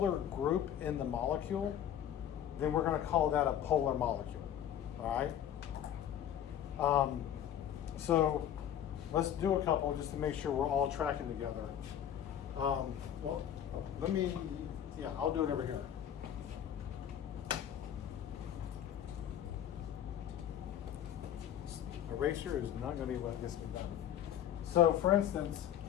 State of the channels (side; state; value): right; quieter; 10.3 dB